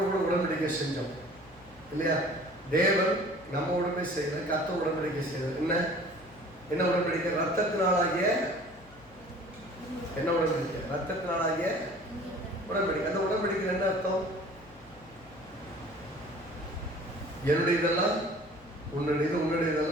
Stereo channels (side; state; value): left; noise; hum, 24 dB below the sound